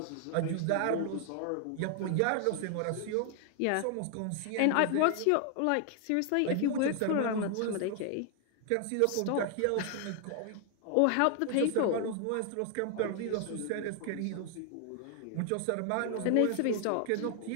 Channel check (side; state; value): both; different; correlation 0.00